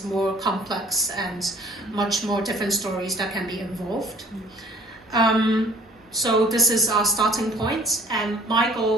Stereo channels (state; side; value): normal; both; correlation 0.55